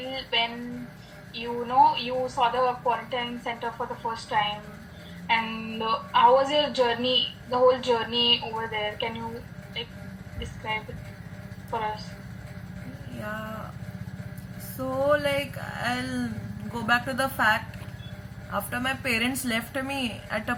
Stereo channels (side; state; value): both; identical; correlation 1.00